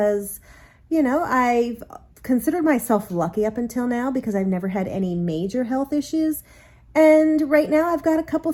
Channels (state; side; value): identical; both; correlation 1.00